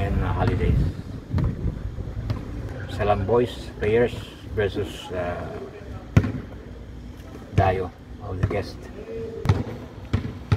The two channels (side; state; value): both; identical; correlation 1.00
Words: holidays. Salam boys players versus Dayo of the guest.